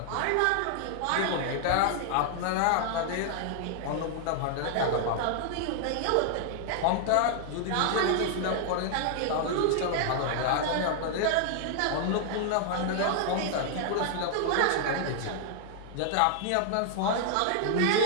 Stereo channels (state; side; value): different; both; correlation -0.01